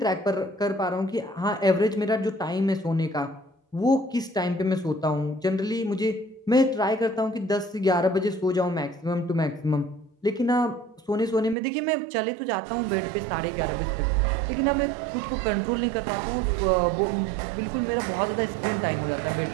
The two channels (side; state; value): left; drops out; at 11.6 s